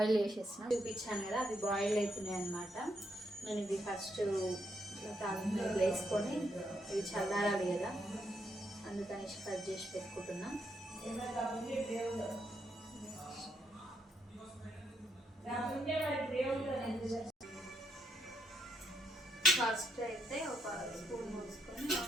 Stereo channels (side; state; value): both; normal; correlation 0.77